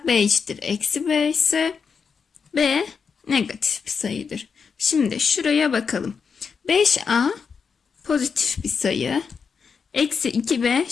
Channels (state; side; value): quieter; right; 5.9 dB